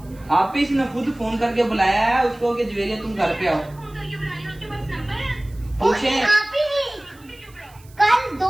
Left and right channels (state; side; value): noise; right; hiss, 27 dB below the sound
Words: आप ही इसने खुद फोन करके बुलाया है उसको कि ज्वेरिया तुम घर पे आओ। पूछे आप ही कल